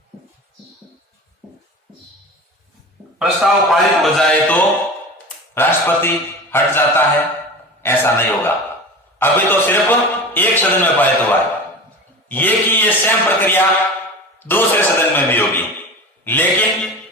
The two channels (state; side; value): normal; both; correlation 0.32